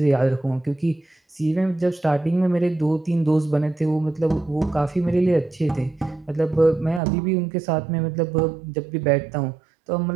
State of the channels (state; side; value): drops out; left; at 7.0 s